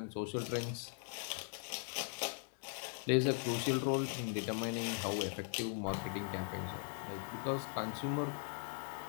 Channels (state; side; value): silent; right; 51 dB below the other